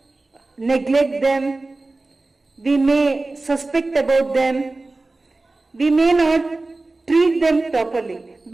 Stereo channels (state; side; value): quieter; left; 3.2 dB